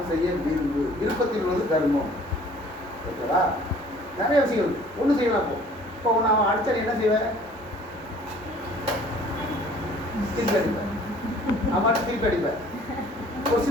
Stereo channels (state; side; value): normal; both; correlation 0.53